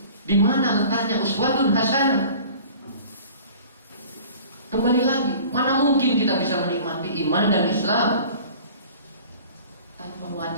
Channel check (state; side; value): inverted; both; correlation -0.45